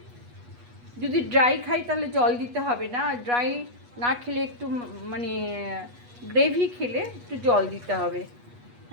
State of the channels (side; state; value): left; late; 8.3 ms